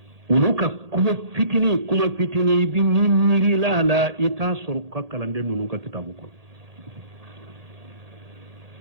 olu ka kuma fitini i bi miirila a la i t'a sɔrɔ ka kalanden ninnu ka kitabu kɔnɔ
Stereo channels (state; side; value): late; left; 1.8 ms